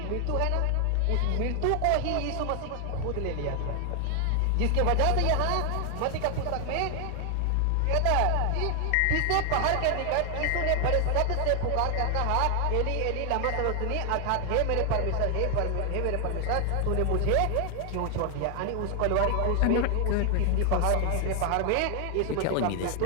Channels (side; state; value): both; different; correlation 0.00